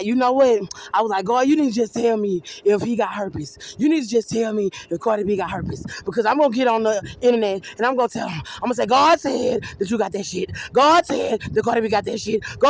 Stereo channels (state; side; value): identical; both; correlation 1.00